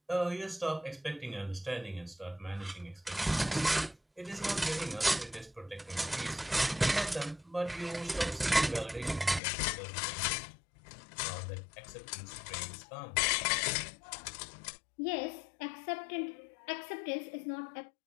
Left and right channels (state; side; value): drops out; right; at 9.4 s